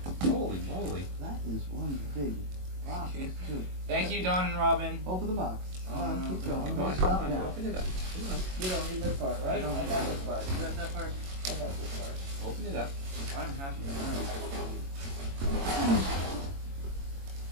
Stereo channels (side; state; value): left; late; 22 ms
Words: Holy moly! That is one big box too. Thank you, Dawn and Robin. Open the box. Come on, keep going. Come Don't on, stop come on, now. open it up. Come on. You don't need this part, right? I got this part. You got that part? I got this part. Open it up. I'm happy with